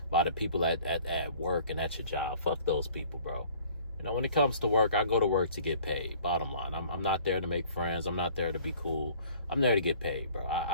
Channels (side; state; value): both; inverted; correlation -0.53